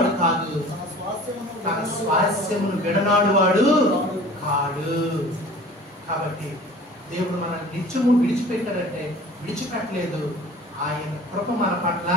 కాదు, తన స్వాస్థ్యమును విడనాడు వాడు కాడు. కాబట్టి దేవుడు మన నిత్యము విడిచిపెట్టాడంటే విడిచిపెట్టలేదు, ఆయన కృప మన పట్ల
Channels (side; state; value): both; normal; correlation 0.44